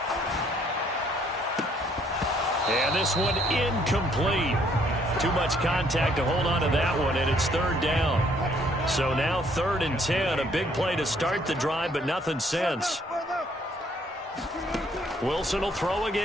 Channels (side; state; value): both; normal; correlation 0.65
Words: And this one incomplete. Too much contact to hold on to that one, and it's 3rd down. So now 3rd and 10, a big play to start the drive, but nothing since. Wilson will throw